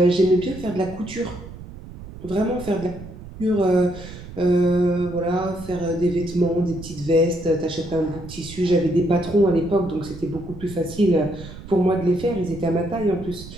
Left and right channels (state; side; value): noise; right; rumble, 14 dB below the sound